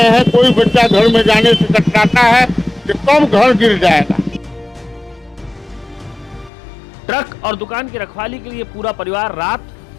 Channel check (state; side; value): drops out; right; at 6.5 s